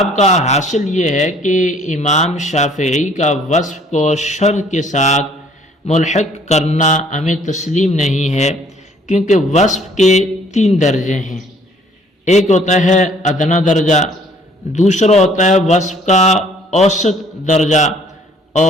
کا حاصل یہ ہے کہ امام شافعی کا وصف کو شرط کے ساتھ ملحق کرنا ہمیں تسلیم نہیں ہے، کیونکہ وصف کے 3 درجے ہیں۔ ایک ہوتا ہے ادنا درجہ، دوسرا ہوتا ہے وصف کا اوسط درجہ،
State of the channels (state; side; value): normal; both; correlation 0.59